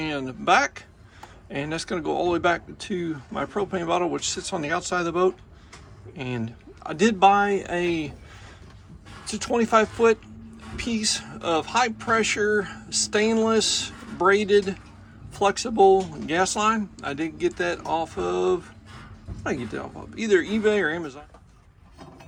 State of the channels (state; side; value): identical; both; correlation 1.00